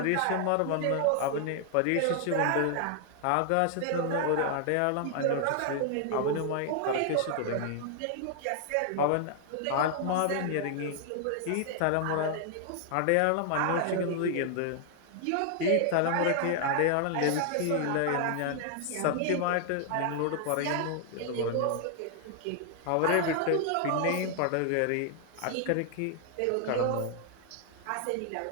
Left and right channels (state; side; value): different; both; correlation 0.00